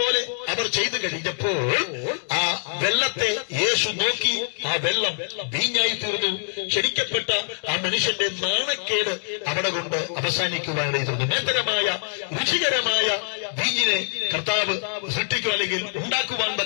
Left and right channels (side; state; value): right; silent; digital silence